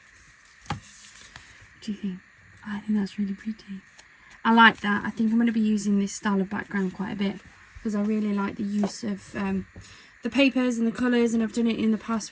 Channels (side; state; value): both; identical; correlation 1.00